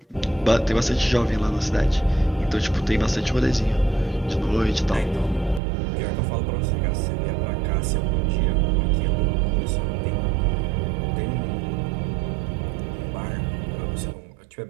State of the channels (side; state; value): left; drops out; at 5.6 s